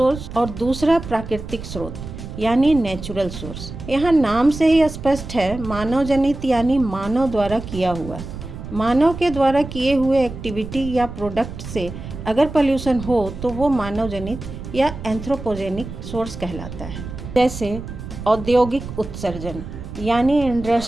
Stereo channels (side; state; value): right; noise; rumble, 10 dB below the sound